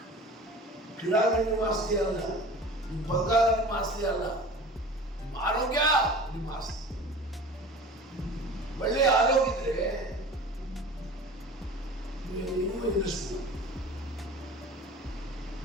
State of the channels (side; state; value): both; normal; correlation 0.39